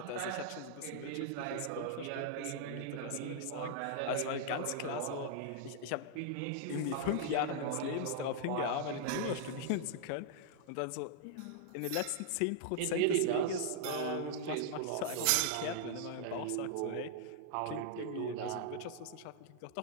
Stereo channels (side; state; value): both; different; correlation -0.01